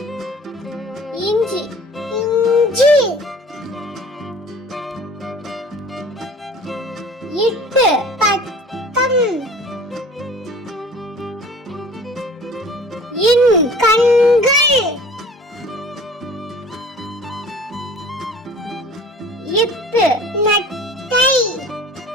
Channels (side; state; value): both; normal; correlation 0.45